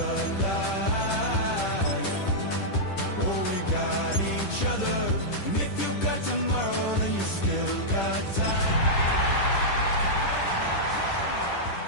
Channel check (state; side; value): late; right; 10 ms